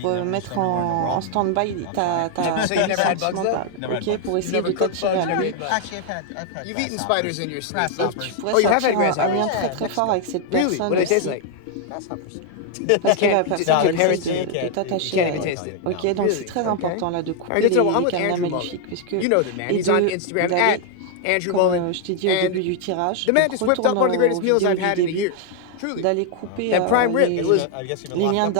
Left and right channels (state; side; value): different; both; correlation 0.00